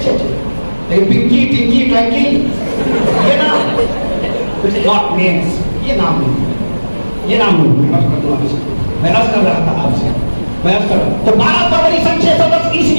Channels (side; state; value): both; inverted; correlation -1.00